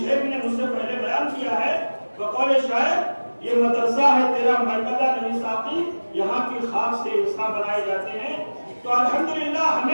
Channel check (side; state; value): both; inverted; correlation -1.00